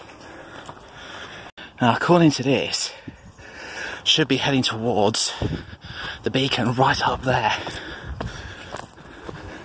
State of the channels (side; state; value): both; identical; correlation 1.00